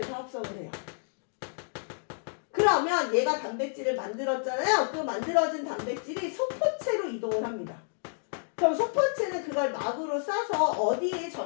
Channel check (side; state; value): right; silent; digital silence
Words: 합성을 해요. 그러면 얘가 단백질을 만들었잖아요. 그 만들어진 단백질이 소포체로 이동을 합니다. 그럼 소포체는 그걸 막으로 싸서 어디에